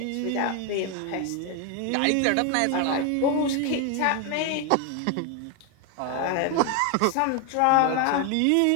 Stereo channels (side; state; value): both; different; correlation 0.01